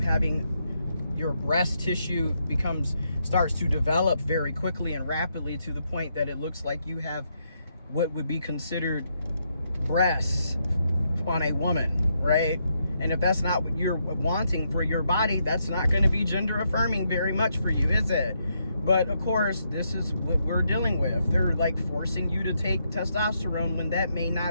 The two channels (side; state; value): both; inverted; correlation -0.79